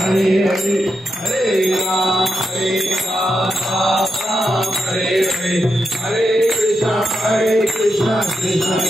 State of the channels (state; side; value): normal; both; correlation 0.85